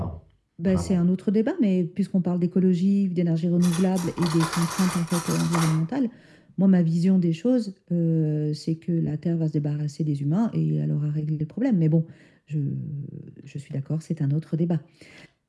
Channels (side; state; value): both; identical; correlation 1.00